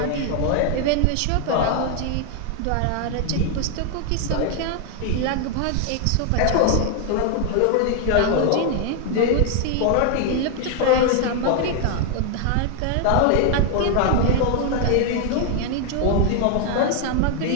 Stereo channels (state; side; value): different; both; correlation 0.00